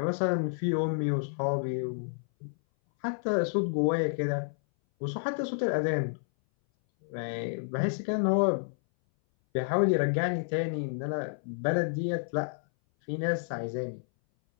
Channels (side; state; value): right; silent; 58 dB below the other